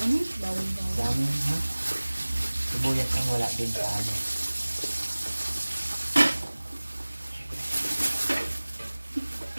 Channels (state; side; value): inverted; both; correlation -1.00